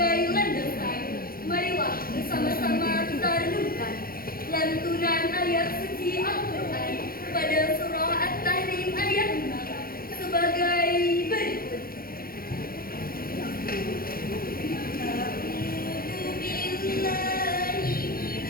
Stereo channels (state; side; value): late; right; 0.43 ms